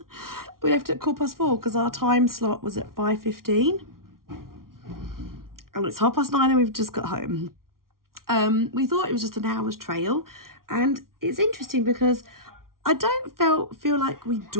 We left at 4:15 because our time slot was at 5:15. And it's 9:30 and we've just got home. We thought it was just an hour's trail, and it's interesting because I don't feel like we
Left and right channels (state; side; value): late; left; 0.93 ms